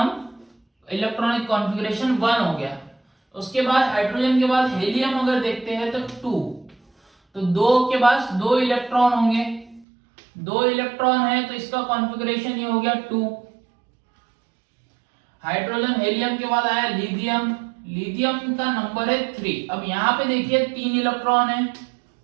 इलेक्ट्रॉनिक कॉन्फ़िगरेशन 1 हो गया। उसके बाद हाइड्रोजन के बाद हेलियम अगर देखते हैं तो 2, तो 2 के पास 2 इलेक्ट्रॉन होंगे, 2 इलेक्ट्रॉन है तो इसका कॉन्फ़िगरेशन ये हो गया 2। हाइड्रोजन हेलियम के बाद आया लिथियम, लिथियम का नंबर है 3। अब यहां पे देखिए 3 इलेक्ट्रॉन है,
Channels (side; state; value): left; drops out; at 9.9 s